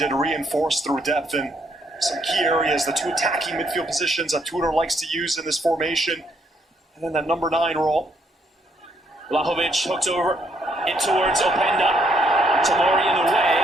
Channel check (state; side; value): normal; both; correlation 0.72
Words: reinforce through depth in some key areas. The two attacking midfield positions that Tudor likes to use in this formation. And then that number 9 role. Vlahovic hooked over in towards Openda. Tomori in the way.